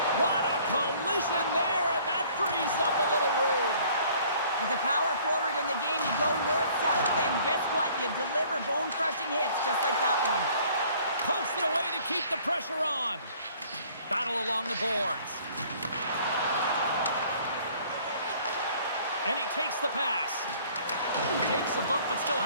What a collision there, and that frees up a little room. As a power forward in the game, you go north-south, and guess what? You deliver bone-crushing hits just like that one. Pokes it away to keep the pressure on. Battle along the boards. And he takes the pass. Takes a bump, but still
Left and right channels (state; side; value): inverted; both; correlation -0.55